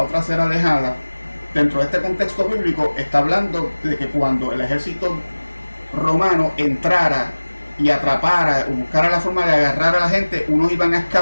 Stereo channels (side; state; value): both; inverted; correlation -1.00